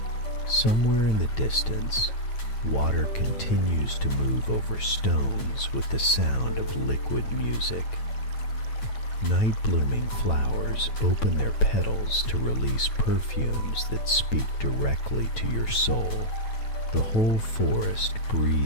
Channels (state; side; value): late; right; 9.1 ms